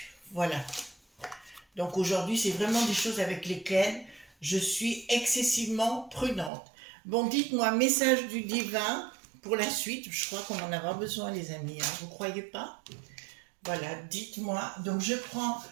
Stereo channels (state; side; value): drops out; left; at 6.5 s